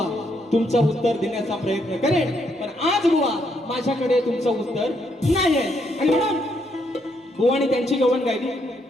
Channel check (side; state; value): both; normal; correlation 0.75